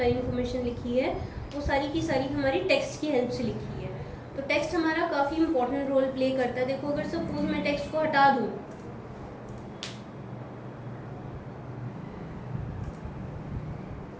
इन्फॉर्मेशन लिखी है वो सारी की सारी हमारी टेक्स्ट की हेल्प से लिखी है। तो टेक्स्ट हमारा काफ़ी इंपॉर्टेंट रोल प्ले करता है। देखो अगर सपोज मैं टेक्स्ट को हटा दूँ,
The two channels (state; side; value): identical; both; correlation 1.00